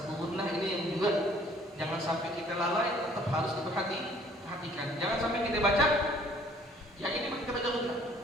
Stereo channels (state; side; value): normal; both; correlation 0.58